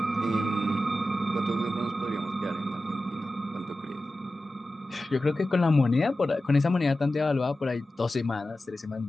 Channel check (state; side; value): normal; both; correlation 0.94